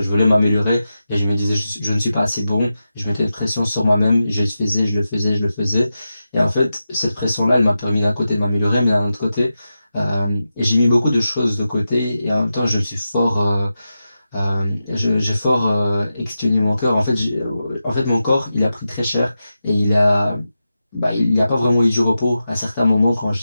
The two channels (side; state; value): both; inverted; correlation -0.91